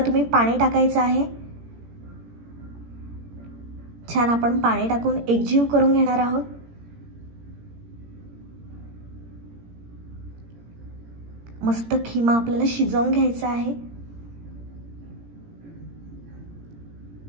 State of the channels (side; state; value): left; late; 17 ms